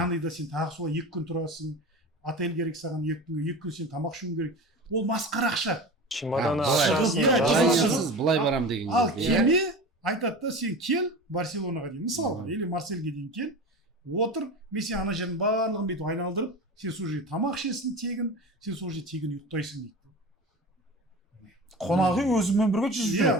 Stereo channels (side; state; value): both; normal; correlation 0.31